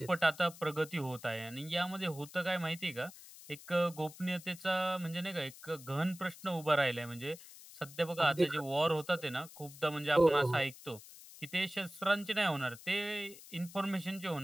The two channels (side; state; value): left; noise; hiss, 17 dB below the sound